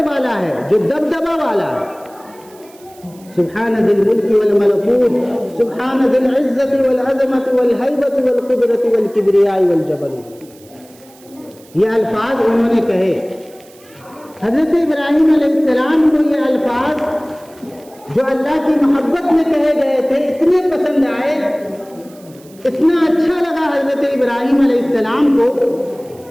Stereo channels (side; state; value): right; noise; hiss, 26 dB below the sound